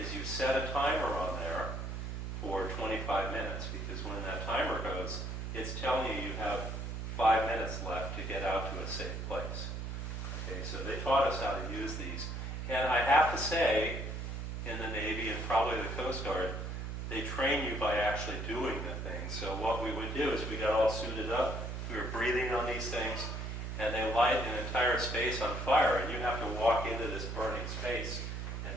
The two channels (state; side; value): noise; right; hum, 4 dB below the sound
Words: you set a timer on there for 25 minutes, because when that timer goes, it's telling you you have 5 minutes left to get out to a safe place. Okay, so they taught us how to use these, and I have to say, in the Navy and probably the Coast Guard, they train you by actually doing the thing. So what we would do is we got all suited up, we were breathing on these things, and they light an entire space on fire, and you have to walk into this burning space and